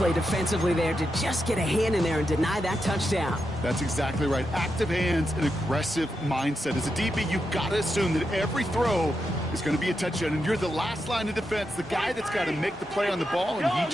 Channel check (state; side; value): normal; both; correlation 0.86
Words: defensively there to just get a hand in there and deny that touchdown. That's exactly right. Active hands and aggressive mindset. As a DB, you've got to assume that every throw is going to be a touchdown, and you're the last line of defense, the guy that's got to make the play on the ball, and he